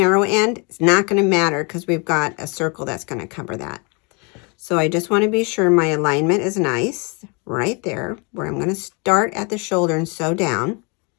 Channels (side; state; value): right; quieter; 32.3 dB